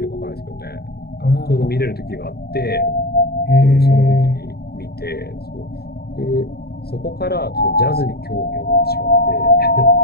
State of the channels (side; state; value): right; late; 0.46 ms